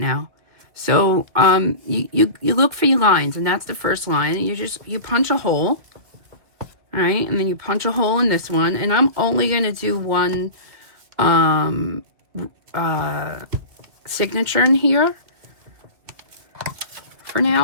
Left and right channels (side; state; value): left; late; 2.5 ms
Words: So you look for your lines, and that's the first line. And you punch a hole, all right? And then you punch a hole in this one. And I'm only going to do one signature in here for